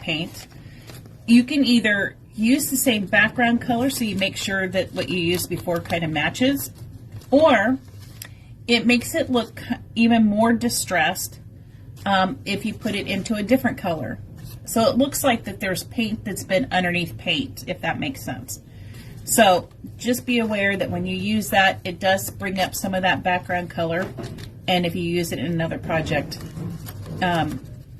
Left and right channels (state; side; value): identical; both; correlation 1.00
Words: you can either use the same background color so you make sure that what you used before kind of matches, or it makes it look even more distressed if you put it into a different color. So it looks like that there's paint that's been underneath paint, if that makes sense. So just be aware that when you use that, it does bring up some of that background color, and if you use it in another project,